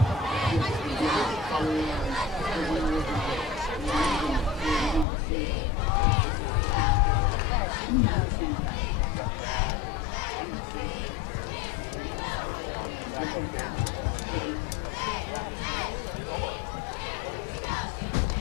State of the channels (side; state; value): right; drops out; at 5.1 s